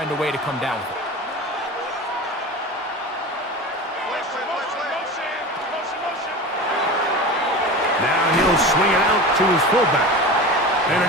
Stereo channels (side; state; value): both; normal; correlation 0.31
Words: a way to come down with it. Now he'll swing it out to his fullback. And